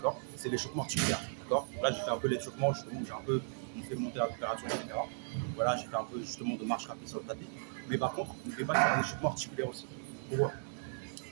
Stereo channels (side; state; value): left; silent; digital silence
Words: c'est l'échauffement articulaire, d'accord. Là, j'ai fait un peu l'échauffement, justement, où j'ai un peu fait monter la température, etc. Voilà, j'ai fait un peu justement de marche rapide sur le tapis. Mais par contre, n'oubliez pas de faire un échauffement articulaire aussi. Pourquoi?